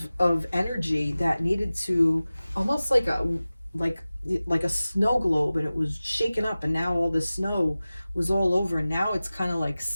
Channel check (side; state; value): both; inverted; correlation -0.97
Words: energy that needed to, almost like a snow globe, and it was shaken up, and now all the snow was all over, and now it's kind of like